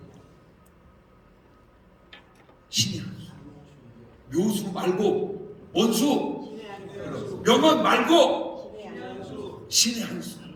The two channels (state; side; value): identical; both; correlation 1.00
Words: 신의 한 수. 묘수 말고 원수, 명언 말고 신의 한 수.